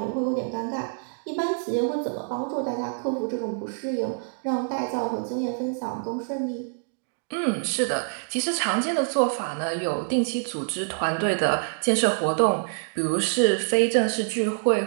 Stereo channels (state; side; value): silent; left; digital silence